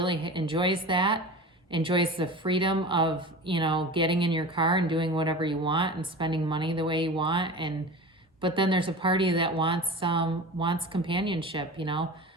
enjoys that, enjoys the freedom of, you know, getting in your car and doing whatever you want and spending money the way you want. But then there's a party that wants companionship, you know.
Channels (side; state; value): both; normal; correlation 0.33